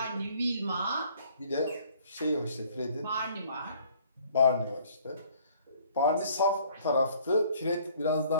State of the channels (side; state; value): both; inverted; correlation -0.59